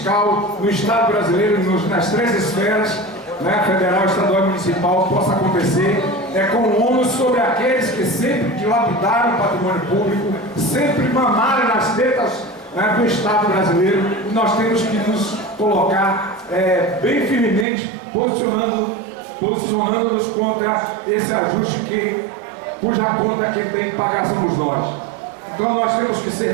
no Estado brasileiro, nas três esferas, né, federal, estadual e municipal, possa acontecer, com o ônus sobre aqueles que sempre dilapidaram o patrimônio público, sempre mamaram nas tetas, né, do Estado brasileiro. E nós temos que nos colocar bem firmemente, posicionando-nos contra esse ajuste cuja conta quem tem que pagar somos nós. Então nós temos que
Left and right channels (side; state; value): left; drops out; at 17.7 s